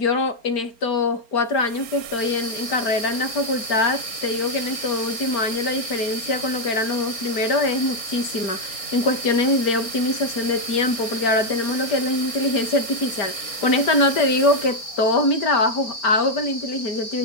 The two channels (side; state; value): right; late; 4.4 ms